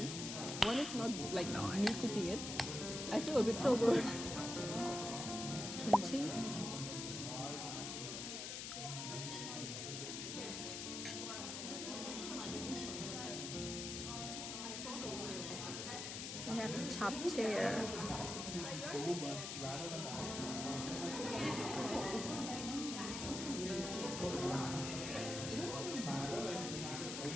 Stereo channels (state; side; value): noise; left; hiss, 5 dB below the sound